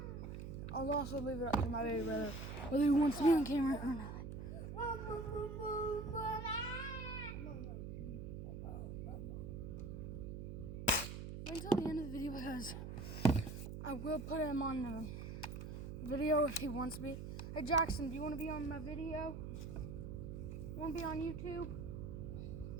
I'll also leave it up to my baby brother whether he wants to be on camera or not. till the end of the video because I will put him on the video if he wants to be. Hey Jackson, do you want to be on my video? Want to be on YouTube?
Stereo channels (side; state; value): right; noise; hum, 7 dB below the sound